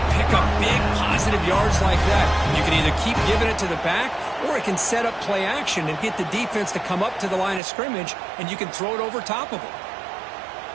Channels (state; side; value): drops out; left; at 7.6 s